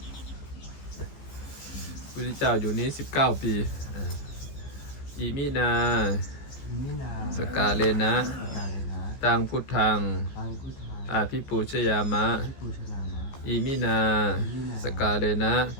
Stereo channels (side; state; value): right; late; 15 ms